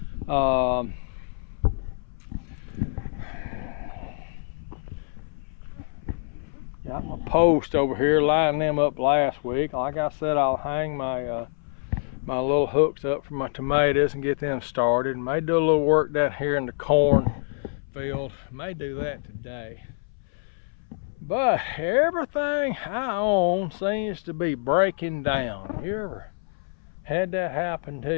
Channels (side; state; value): right; silent; 60 dB below the other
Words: Got my post over here, lining them up last week. Like I said, I'll hang my my little hooks up for my tomatoes and get them started. May do a little work down here in the corn field. May do that today. But everything I own seems to be breaking down. You ever had that happen